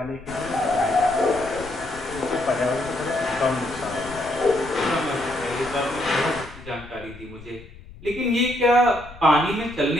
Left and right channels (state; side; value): noise; left; rumble, 18 dB below the sound